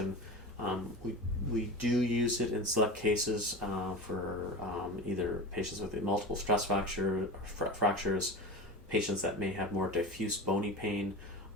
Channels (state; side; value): normal; both; correlation 0.27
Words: We do use it in select cases for either patients with multiple stress fractures, patients that may have more diffuse bony pain,